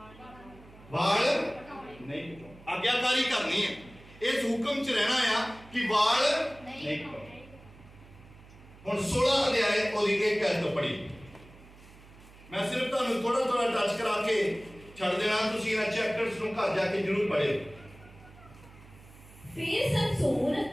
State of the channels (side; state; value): right; noise; hum, 22 dB below the sound